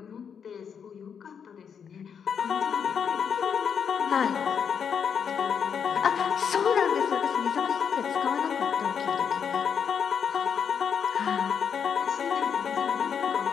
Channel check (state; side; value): quieter; right; 7.2 dB